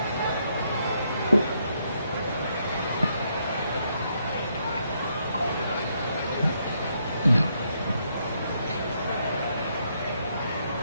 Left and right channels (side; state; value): both; inverted; correlation -0.75